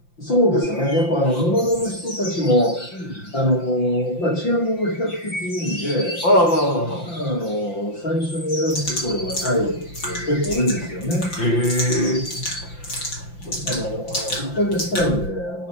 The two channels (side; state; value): right; late; 5.8 ms